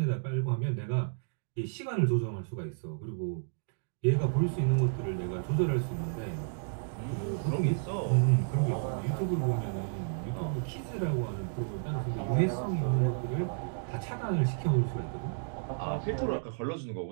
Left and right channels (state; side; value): silent; left; digital silence